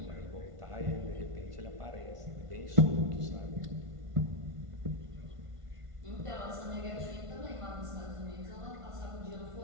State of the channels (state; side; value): late; left; 1.5 ms